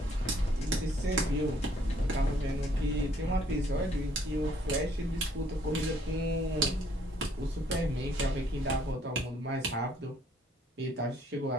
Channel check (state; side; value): normal; both; correlation 0.64